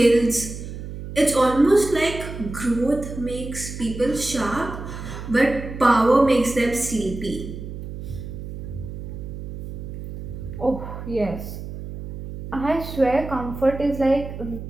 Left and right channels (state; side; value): noise; right; hum, 9 dB below the sound